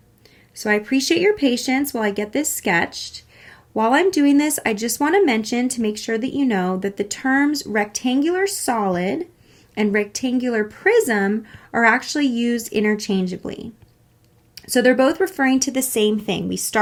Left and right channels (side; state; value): both; identical; correlation 1.00